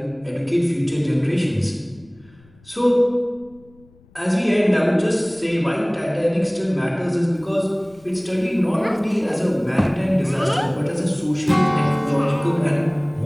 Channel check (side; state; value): left; noise; rumble, 29 dB below the sound